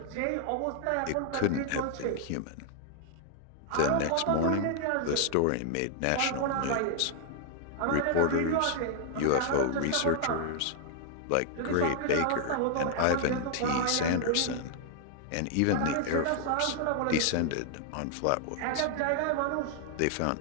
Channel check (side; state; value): both; different; correlation 0.00